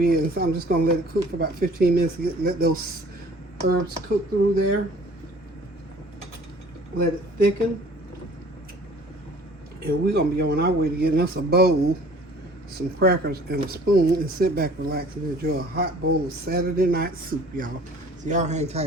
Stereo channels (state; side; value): normal; both; correlation 0.51